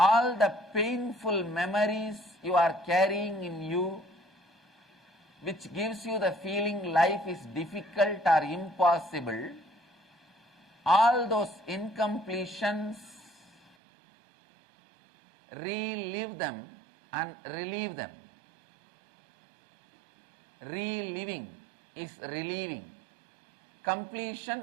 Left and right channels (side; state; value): left; drops out; at 13.7 s